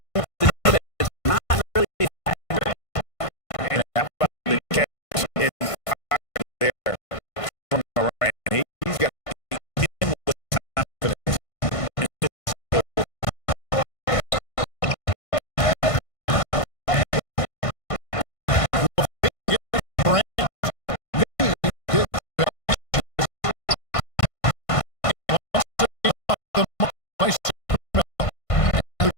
It's not really accurate. And how about the catch in there from Morant? He's got him with confidence.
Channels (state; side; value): late; right; 1.5 ms